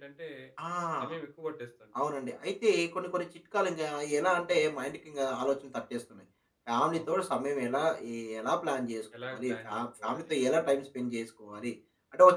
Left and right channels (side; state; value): both; identical; correlation 1.00